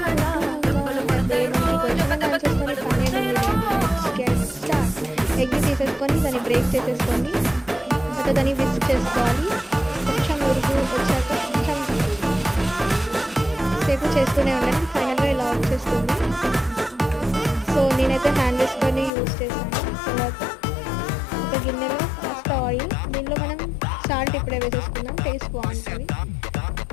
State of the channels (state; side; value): drops out; right; at 19.1 s